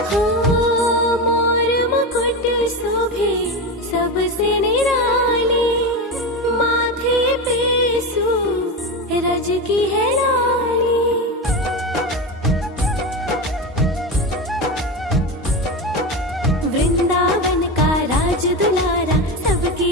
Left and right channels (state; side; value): normal; both; correlation 0.19